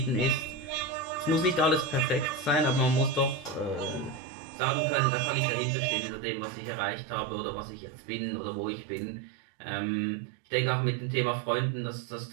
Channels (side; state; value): left; drops out; at 4.2 s